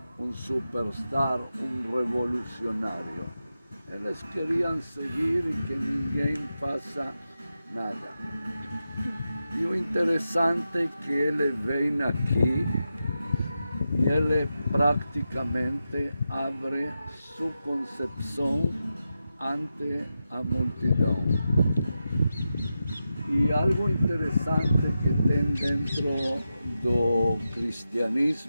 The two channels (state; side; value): inverted; both; correlation -0.90